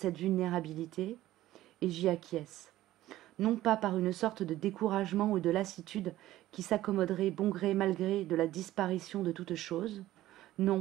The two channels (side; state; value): left; quieter; 15.0 dB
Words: vulnérabilité, et j'y acquiesce. Non pas par une sorte de découragement ou de lassitude qui s'accommoderait bon gré mal gré de la disparition de toute chose.